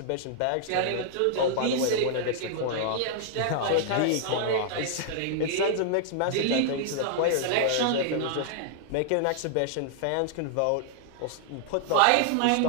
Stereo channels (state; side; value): different; both; correlation -0.01